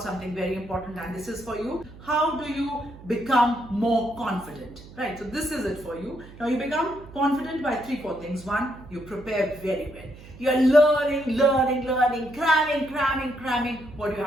something very important, and this is for you. How do you become more confident? Right, so this is it for you. Now you become confident by 3-4 things. 1, you prepare very well. You are learning, cramming what you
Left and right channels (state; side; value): noise; right; hum, 18 dB below the sound